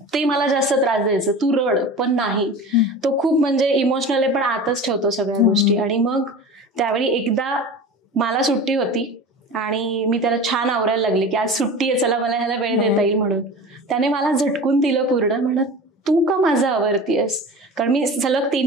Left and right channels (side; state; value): both; normal; correlation 0.34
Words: ते मला जास्त त्रास द्यायचं, तू रड, पण नाही, तो खूप म्हणजे इमोशनल आहे पण आतच ठेवतो सगळ्या गोष्टी. आणि मग त्यावेळी एकदा मला सुट्टी होती आणि मी त्याला छान आवरायला लागले की आज सुट्टी आहे, चला मला ह्याला वेळ देता येईल म्हणून. त्याने मला झटकून दिलं पूर्ण, म्हणत तू का माझं आवरतीयस? कारण मी सलग